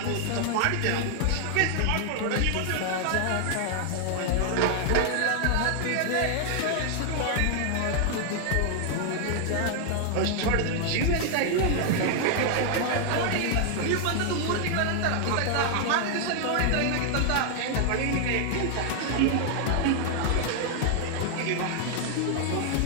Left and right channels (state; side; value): different; both; correlation 0.00